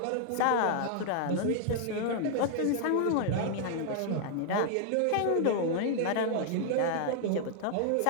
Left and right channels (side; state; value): both; different; correlation 0.00